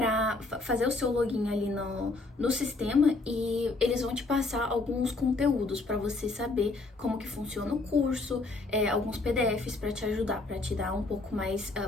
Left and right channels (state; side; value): quieter; right; 3.4 dB